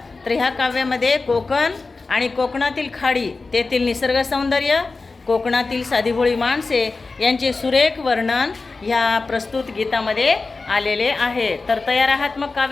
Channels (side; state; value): right; quieter; 3.9 dB